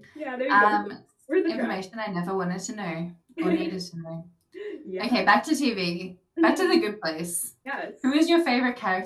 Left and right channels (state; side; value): identical; both; correlation 1.00